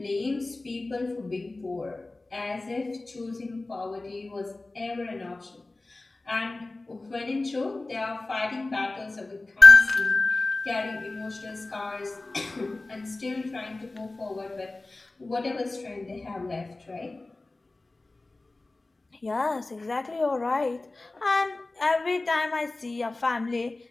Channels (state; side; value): quieter; right; 3.1 dB